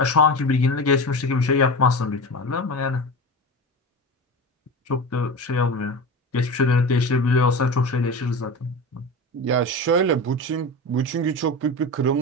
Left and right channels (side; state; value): both; normal; correlation 0.27